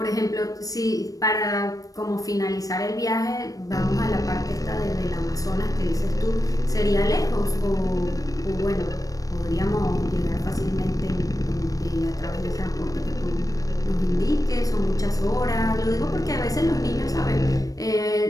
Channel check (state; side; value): late; right; 0.17 ms